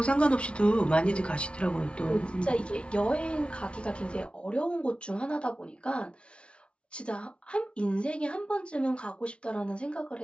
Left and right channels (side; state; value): right; late; 0.059 ms